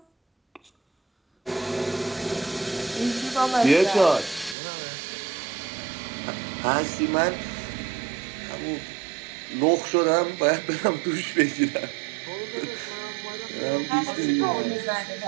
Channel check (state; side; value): drops out; left; at 4.5 s